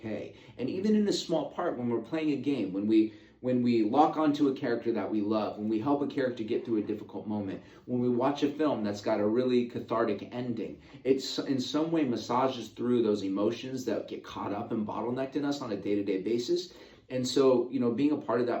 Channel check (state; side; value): identical; both; correlation 1.00